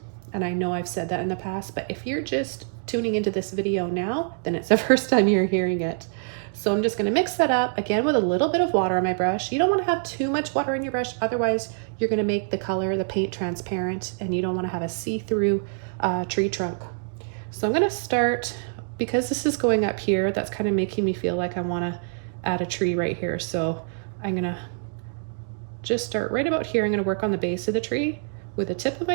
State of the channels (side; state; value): left; silent; digital silence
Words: And I know I've said that in the past, but if you're just tuning into this video now, then it's the first time you're hearing it. So I'm just going to mix that up again with a little bit of water on my brush. You don't want to have too much water in your brush, otherwise you're going to make the color, the paint, transparent, and you don't want to have a see-through tree trunk. So I'm going to start, because this is going up here, that's kind of making me feel like I want to add a tree right here. So I'm going to just start right about here. I'm going to work on the base of the tree with the tip of